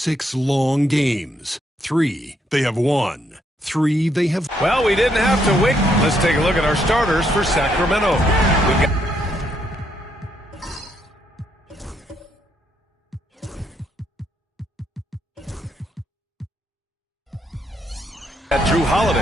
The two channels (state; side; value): normal; both; correlation 0.74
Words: long games. 3 they have won. 3 they have... Well, we didn't have to wait. Let's take a look at our starters for Sacramento. We've got Drew